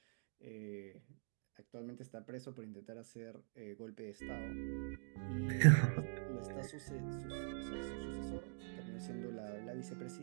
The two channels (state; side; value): silent; left; digital silence